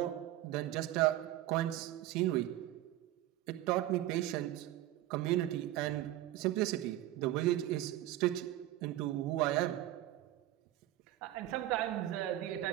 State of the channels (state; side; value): quieter; left; 14.4 dB